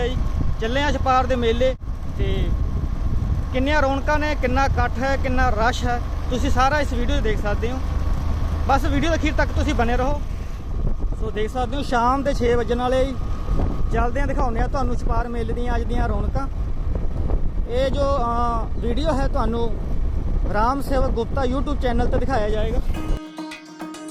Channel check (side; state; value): both; identical; correlation 1.00